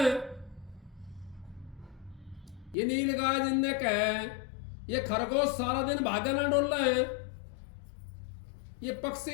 ये नीलगाय जिनने कहे, ये खरगोश सारा दिन भागा ना डोल रहा है, ये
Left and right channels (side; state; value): right; drops out; at 2.8 s